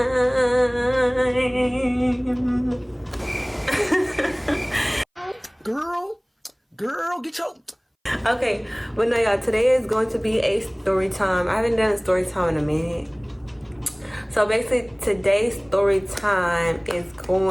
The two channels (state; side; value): identical; both; correlation 1.00